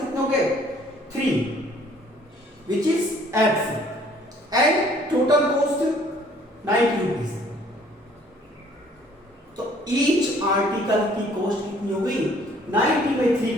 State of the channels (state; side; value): normal; both; correlation 0.58